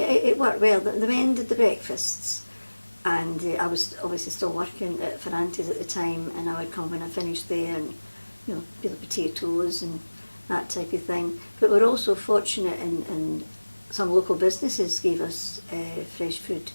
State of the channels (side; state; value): both; inverted; correlation -1.00